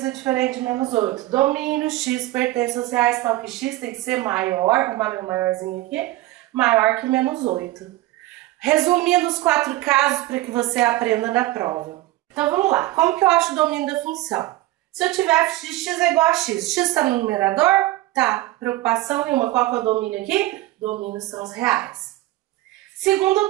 é diferente de menos 8. Domínio, x pertence aos reais, tal que x tem que ser maior, vou marcar meu maiorzinho aqui, maior que menos 8. Resumindo os 4 casos para que você aprenda na prova. Então, vamos lá. Como que eu acho o domínio da função? Se eu tiver f de x é igual a x, x está no numerador? Tá. Preocupação nenhuma. Qual que é o domínio aqui? Domínio são os reais. Segundo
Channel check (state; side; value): quieter; left; 17.4 dB